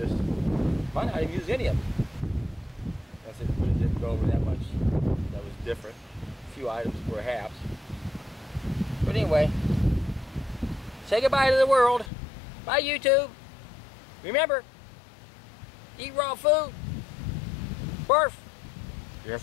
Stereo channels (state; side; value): drops out; right; at 12.1 s